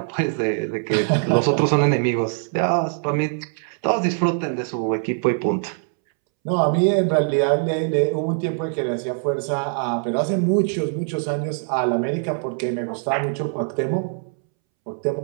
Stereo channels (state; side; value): silent; left; 64 dB below the other